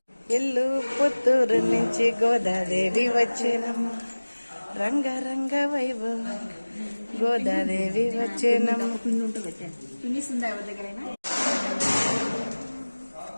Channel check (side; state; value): both; inverted; correlation -1.00